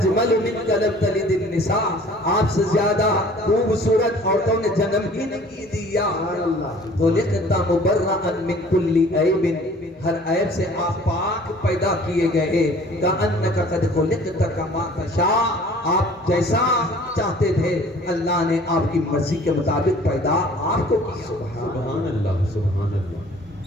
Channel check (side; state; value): both; normal; correlation 0.51